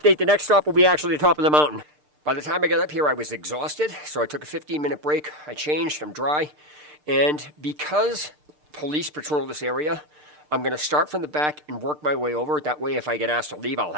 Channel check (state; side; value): late; left; 6.6 ms